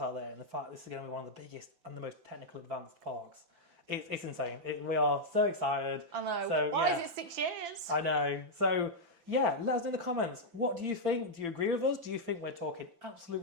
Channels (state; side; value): late; left; 5.9 ms